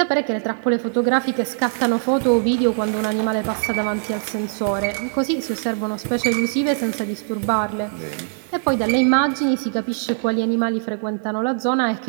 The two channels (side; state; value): left; silent; digital silence